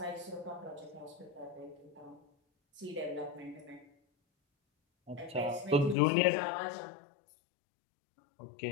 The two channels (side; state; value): right; drops out; at 6.0 s